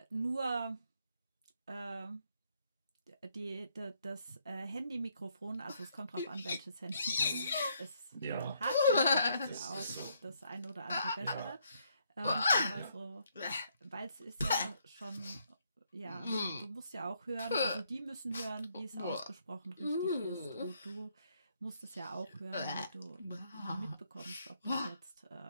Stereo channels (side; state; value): both; inverted; correlation -0.72